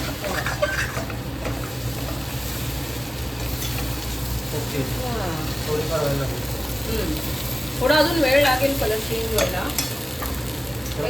ओके. थोडीफार वेळ लागेल. थोडा अजून वेळ लागेल कलर चेंज व्हायला.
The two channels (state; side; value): normal; both; correlation 0.96